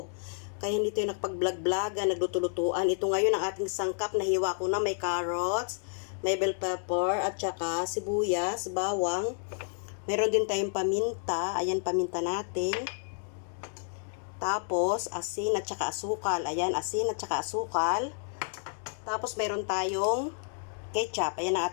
Kaya hindi tayo nakapag-vlog-vlogan, nagluto-lutuan. Ito ngayon ang ating sangkap, nahiwa ko na may carrots, may bell pepper, at saka sibuyas, bawang. Meron din tayong paminta, ayan paminta natin. Tapos, asin at saka asukal. Ayan, asin at saka asukal. Tapos, meron tayong ketchup. Ayan ang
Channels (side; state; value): right; silent; digital silence